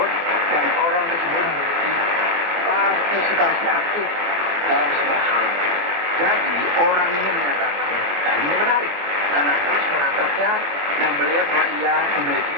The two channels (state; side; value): late; left; 24 ms